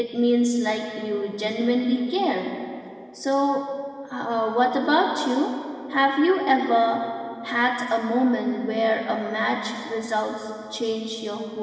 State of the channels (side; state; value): both; identical; correlation 1.00